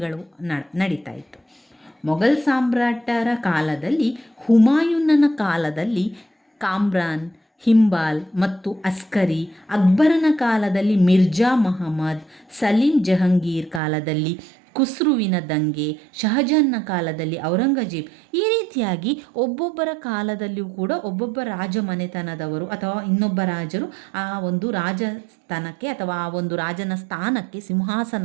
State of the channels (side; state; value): left; drops out; at 13.8 s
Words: ನಡೀತಾ ಇತ್ತು. ಮೊಘಲ್ ಸಾಮ್ರಾಟರ ಕಾಲದಲ್ಲಿ, ಹುಮಾಯೂನನ ಕಾಲದಲ್ಲಿ ಕಾಮ್ರಾನ್, ಹಿಂಬಾಲ್ ಮತ್ತು ಅಸ್ಕರಿ, ಅಕ್ಬರನ ಕಾಲದಲ್ಲಿ ಮಿರ್ಜಾ ಮಹಮ್ಮದ್, ಸಲೀಂ ಜಹಂಗೀರ್ ಕಾಲದಲ್ಲಿ ಖುಸ್ರುವಿನ ದಂಗೆ, ಶಹಜಾನ್ನ ಕಾಲದಲ್ಲಿ ಔರಂಗಜೇಬ್, ಈ ರೀತಿಯಾಗಿ ಒಬ್ಬೊಬ್ಬರ ಕಾಲದಲ್ಲಿಯೂ ಕೂಡ ಒಬ್ಬೊಬ್ಬ ರಾಜ ಮನೆತನದವರು ಅಥವಾ ಇನ್ನೊಬ್ಬ ರಾಜರು ಆ ಒಂದು ರಾಜಸ್ಥಾನಕ್ಕೆ ಅಥವಾ ಆ ಒಂದು ರಾಜನ ಸ್ಥಾನಕ್ಕೆ,